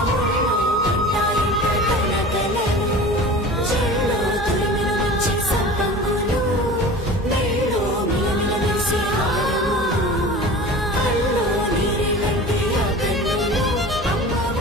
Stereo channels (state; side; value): normal; both; correlation 0.37